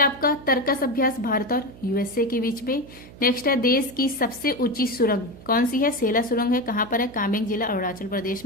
आपका तर्कस अभ्यास भारत और USA के बीच में। नेक्स्ट है देश की सबसे ऊंची सुरंग कौन सी है? सेला सुरंग है। कहाँ पर है? कामेंग जिला अरुणाचल प्रदेश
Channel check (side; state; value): right; noise; hum, 19 dB below the sound